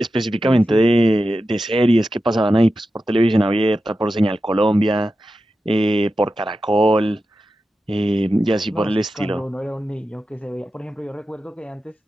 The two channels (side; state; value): both; normal; correlation 0.91